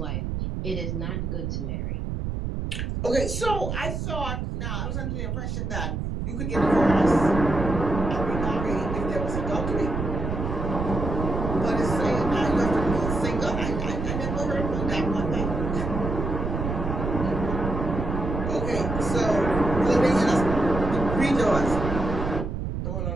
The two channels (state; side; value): noise; right; rumble, 3 dB below the sound